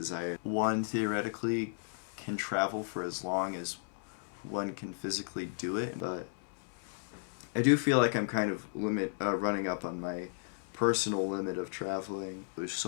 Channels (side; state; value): right; silent; 55 dB below the other